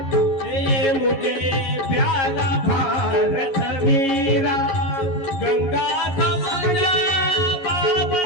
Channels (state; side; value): late; right; 11 ms